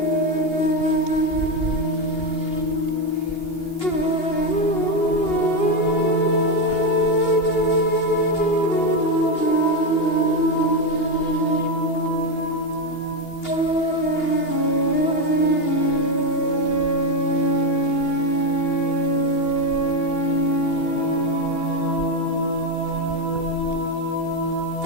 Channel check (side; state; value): right; late; 2.8 ms